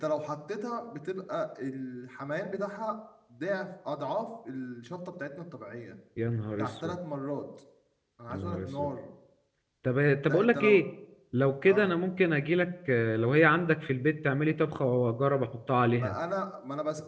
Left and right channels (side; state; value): both; identical; correlation 1.00